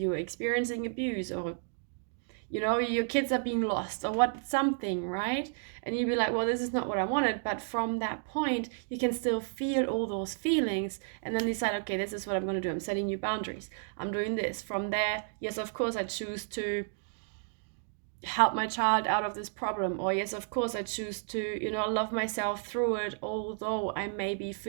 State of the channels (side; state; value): left; silent; digital silence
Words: experiencing abuse, or your kids are being lost or what, something, right? And you'd be like, well, this is not what I wanted. But from that point, you can still feel all those feelings and then decide, okay, this is what I'm going to do. I'm setting new boundaries. I'm doing this. From there, yes, of course, I choose to help my child out of this problem. Or yes, of course, I choose to, love myself through it, although I may be